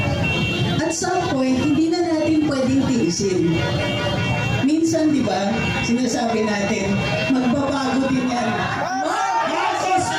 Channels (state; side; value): identical; both; correlation 1.00